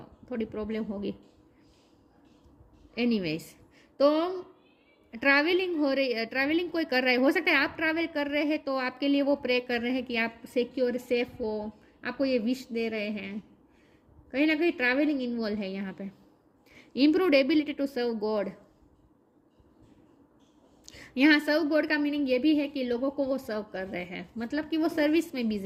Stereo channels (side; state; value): both; identical; correlation 1.00